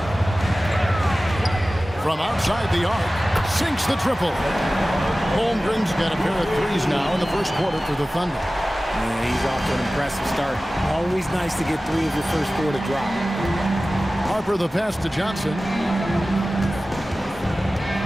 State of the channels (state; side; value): normal; both; correlation 0.96